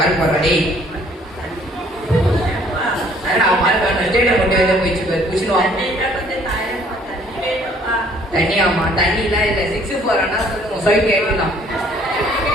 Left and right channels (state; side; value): normal; both; correlation 0.60